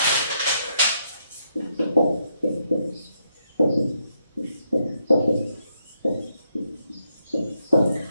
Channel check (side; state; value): both; inverted; correlation -0.78